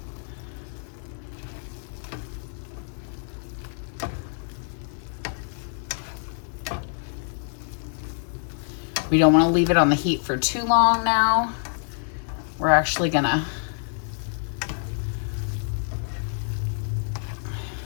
We don't want to leave it on the heat for too long now. We're actually gonna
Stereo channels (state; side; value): silent; right; digital silence